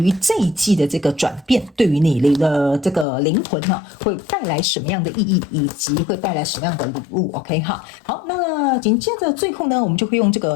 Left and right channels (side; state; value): right; drops out; at 3.1 s